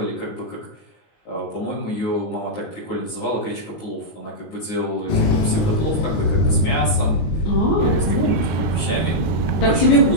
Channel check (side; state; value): right; late; 19 ms